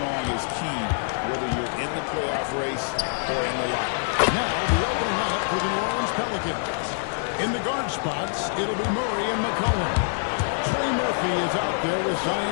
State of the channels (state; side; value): silent; right; digital silence